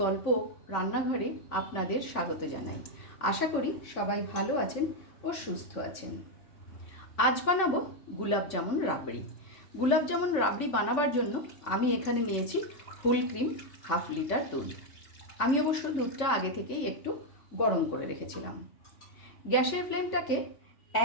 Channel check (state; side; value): late; right; 3.5 ms